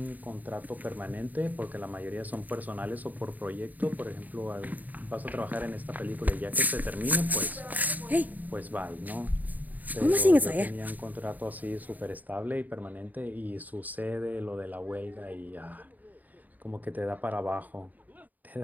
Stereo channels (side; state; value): left; late; 0.082 ms